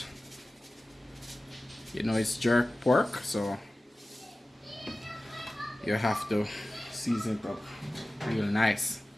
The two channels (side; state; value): both; normal; correlation 0.96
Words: You know, it's jerk pork, so you have to season it up real nice.